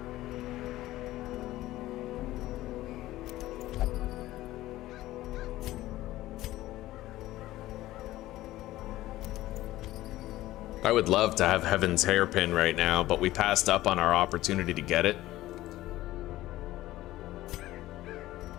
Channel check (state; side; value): quieter; right; 16.0 dB